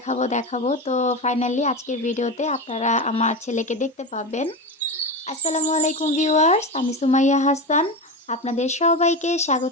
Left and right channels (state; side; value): normal; both; correlation 0.20